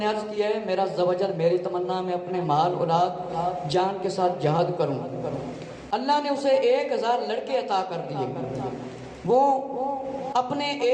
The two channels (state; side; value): identical; both; correlation 1.00